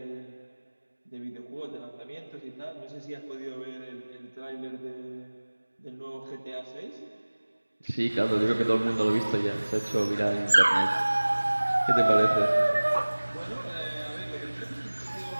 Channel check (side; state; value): both; inverted; correlation -1.00